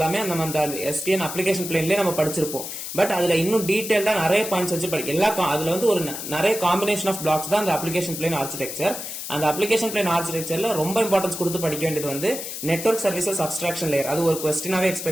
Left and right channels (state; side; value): noise; left; hiss, 7 dB below the sound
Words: நம்ம அந்த எஸ்டிஎன் அப்ளிகேஷன் பிளேன்லயே நம்ம படிச்சிருப்போம். பட் அதுல இன்னும் டீடைல்டா நிறைய பாயிண்ட்ஸ் வச்சு அதுல வந்து ஒரு நிறைய காம்பினேஷன் ஆஃப் பிளாக்ஸ் தான் அந்த அப்ளிகேஷன் பிளேன் ஆர்கிடெக்சர். அந்த அப்ளிகேஷன் பிளேன் ஆர்கிடெக்சர்ல ரொம்ப இம்பார்ட்டன்ஸ் கொடுத்து படிக்க வேண்டியது வந்து நெட்வொர்க் சர்வீசஸ் அப்ஸ்ட்ராக்ஷன் லேயர், அது ஒரு கொஸ்டினாவே